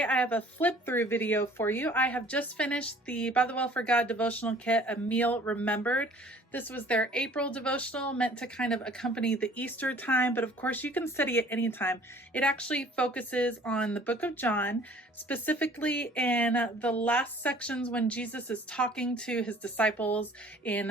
I have a flip through video for you. I have just finished the By the Well for God devotional kit, A Meal Remembered. This was their April devotional, meant to kind of accompany the Easter time, but of course you can study it anytime. It actually focuses on the book of John, specifically in the last sections when Jesus is talking to his disciples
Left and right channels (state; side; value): normal; both; correlation 0.52